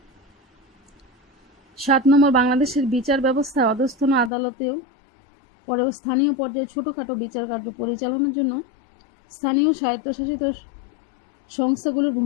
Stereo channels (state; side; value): drops out; right; at 4.3 s